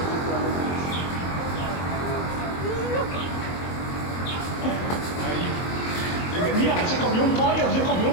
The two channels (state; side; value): late; right; 23 ms